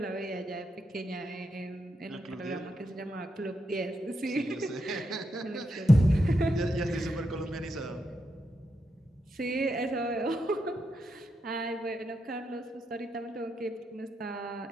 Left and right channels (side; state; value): both; normal; correlation 0.83